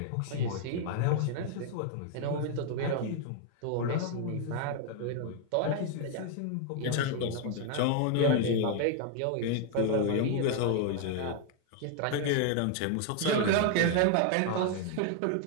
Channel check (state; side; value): different; both; correlation 0.00